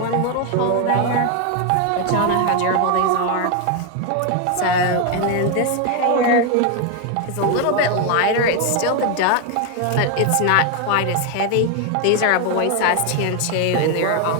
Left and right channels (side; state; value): both; different; correlation 0.01